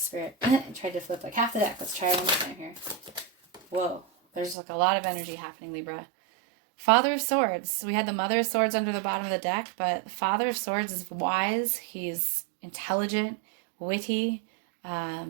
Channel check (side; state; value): left; drops out; at 4.5 s